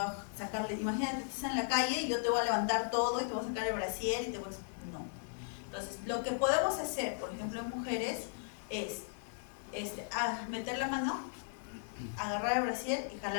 a sacarle, imagínate que estás en la calle y yo te voy a levantar todo y te voy a sacar el brasier y te voy a... No. Entonces, lo que podemos hacer, por ejemplo, en mujeres, es meter la mano, agarrar el brasier y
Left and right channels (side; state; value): right; silent; 53 dB below the other